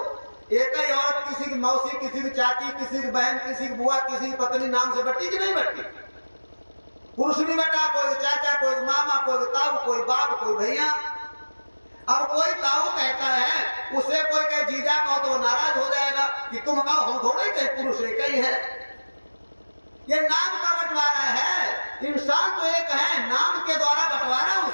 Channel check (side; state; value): both; inverted; correlation -1.00